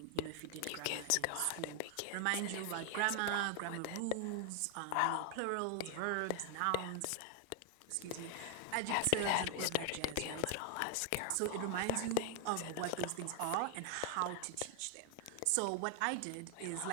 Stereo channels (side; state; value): both; different; correlation 0.00